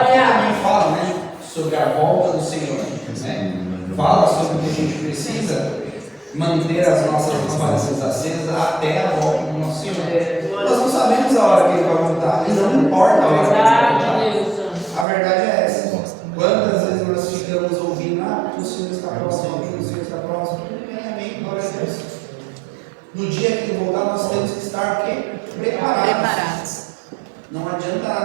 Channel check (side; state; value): left; drops out; at 15.1 s